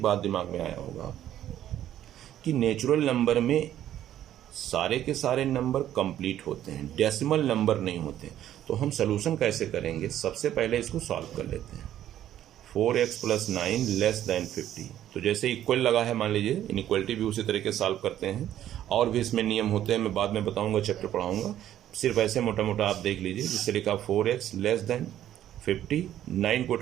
बात दिमाग में आया होगा कि नेचुरल नंबर में सारे के सारे नंबर कंप्लीट होते हैं, डेसिमल नंबर नहीं होते। तो हम सोल्यूशन कैसे करेंगे, सबसे पहले इसको सॉल्व कर लेते हैं। 4x प्लस 9 लेस देन 50, तो जैसे इक्वल लगा है मान लीजिए, इनइक्वलिटी भी उसी तरीके से सॉल्व करते हैं। और भी इसमें नियम होते हैं, मैं बाद में बताऊंगा, चैप्टर पढ़ाऊंगा। सिर्फ ऐसे मोटा मोटा आप देख लीजिए, जिससे लिखा 4x लेस देन 50, 9 को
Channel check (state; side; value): quieter; left; 11.8 dB